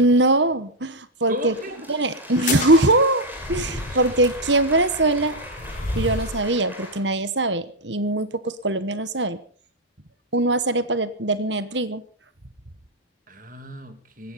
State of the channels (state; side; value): normal; both; correlation 0.00